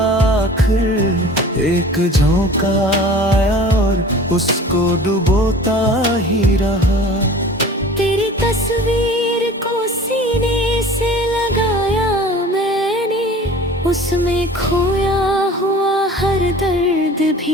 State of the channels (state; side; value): normal; both; correlation 0.43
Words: आखिर, एक झोंका आया और उसको डुबोता ही रहा। तेरी तस्वीर को सीने से लगाया मैंने, उसमें खोया हुआ हर दर्द